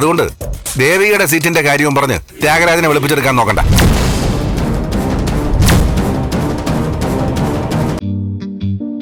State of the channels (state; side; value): identical; both; correlation 1.00